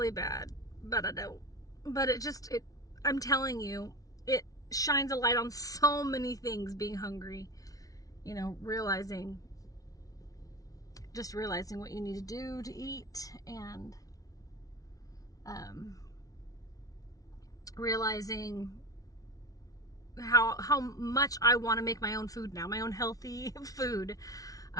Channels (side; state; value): right; late; 0.18 ms